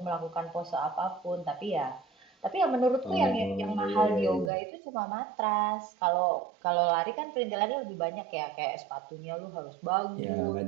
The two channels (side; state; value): left; drops out; at 4.5 s